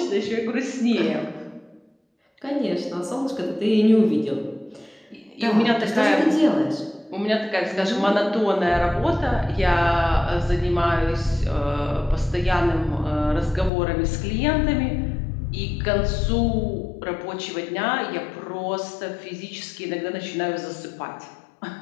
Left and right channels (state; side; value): drops out; right; at 13.7 s